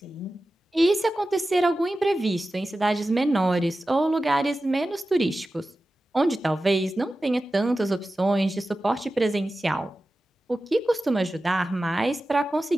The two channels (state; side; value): normal; both; correlation 0.94